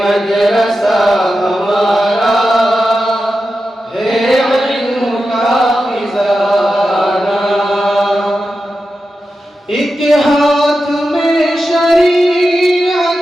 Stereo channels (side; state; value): both; normal; correlation 0.91